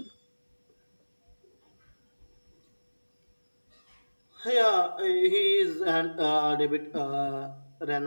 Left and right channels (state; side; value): inverted; both; correlation -1.00